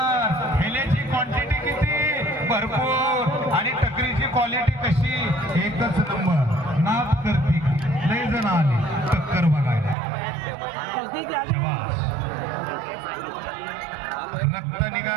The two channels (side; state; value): left; drops out; at 10.0 s